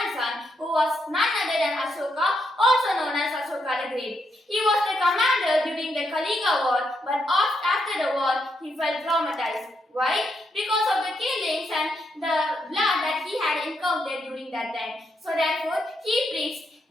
who was none other than Ashoka, also known as Ashoka the Great. He was the commander during the Kaliga War, but after the war, he felt traumatized. Why? Because of the killings and the blood that he had encountered during that time. So therefore, he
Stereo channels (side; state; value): both; normal; correlation 0.79